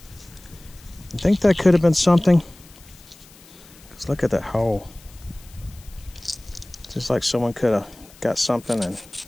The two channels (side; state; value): left; noise; hiss, 24 dB below the sound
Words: I think that could have been something. Because look at that hole. Just like someone could have got something and